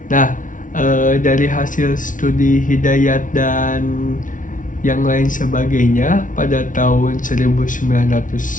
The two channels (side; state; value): right; late; 0.38 ms